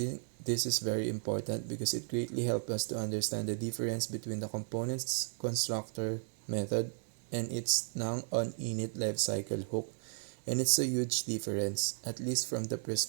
this is very important because it greatly helps us to understand the difference between the components constructor method and its now on init lifecycle hook, and it's a huge difference, at least from the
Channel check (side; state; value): left; silent; digital silence